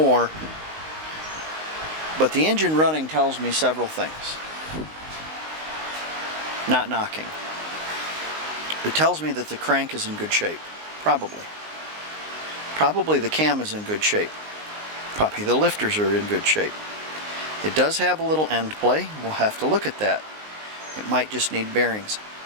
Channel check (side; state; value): left; late; 19 ms